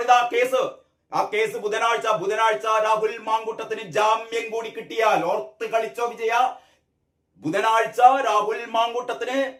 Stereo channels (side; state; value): both; identical; correlation 1.00